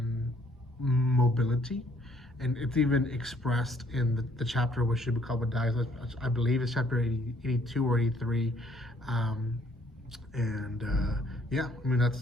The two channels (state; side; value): normal; both; correlation 0.64